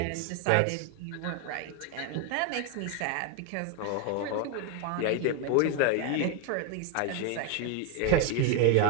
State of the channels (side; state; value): both; different; correlation 0.01